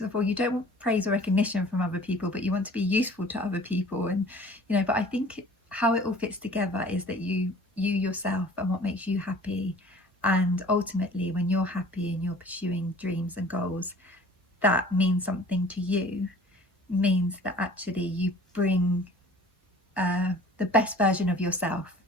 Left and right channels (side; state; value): both; normal; correlation 0.48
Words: before, you don't want praise or recognition from other people, but you want to be useful to other people. And, you know, but I think how it all fits together is that you yourself and what makes you happy. And ultimately, when you're happy and you're pursuing dreams and goals that mean something to you, means that actually you bring the best version of yourself